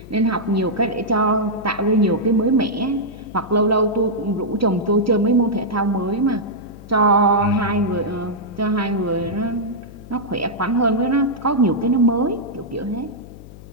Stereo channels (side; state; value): left; noise; hum, 17 dB below the sound